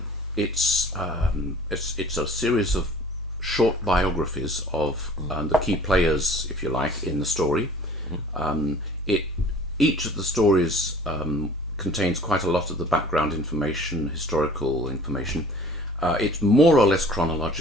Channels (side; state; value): both; normal; correlation 0.49